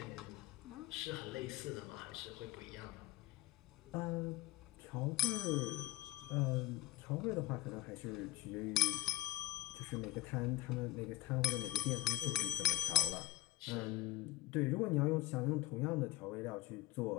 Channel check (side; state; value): right; quieter; 16.3 dB